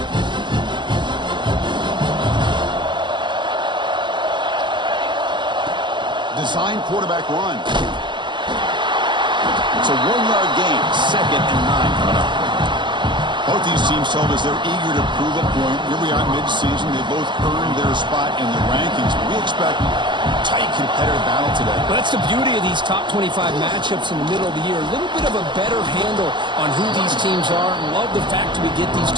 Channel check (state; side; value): late; left; 0.22 ms